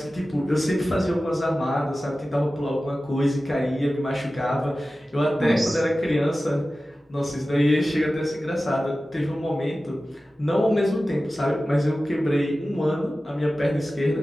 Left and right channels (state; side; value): normal; both; correlation 0.95